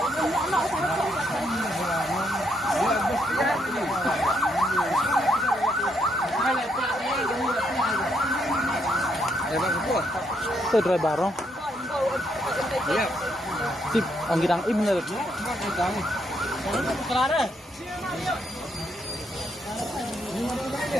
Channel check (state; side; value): normal; both; correlation 0.75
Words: Itu dry barong. Iya. Sip, ang gidang im na. Klare.